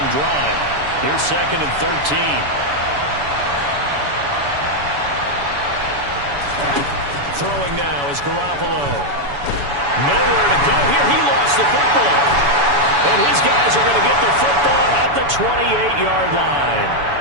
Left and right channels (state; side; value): late; left; 7.0 ms